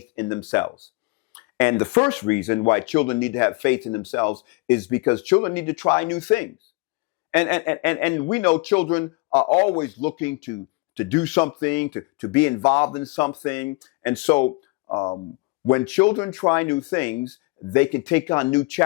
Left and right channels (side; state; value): right; quieter; 27.1 dB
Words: in themselves. And the first reason why children need to have faith in themselves is because children need to try new things. And we know children are always looking to do something, to be involved in something. And so when children try new things, they can take on new